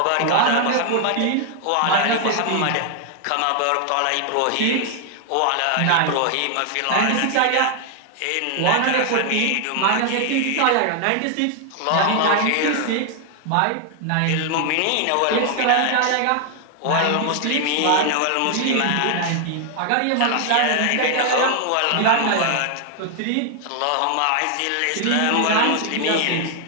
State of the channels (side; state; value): both; different; correlation 0.00